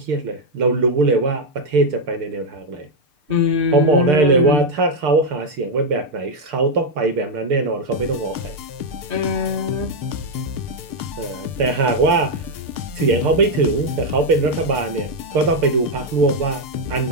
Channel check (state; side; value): late; left; 6.7 ms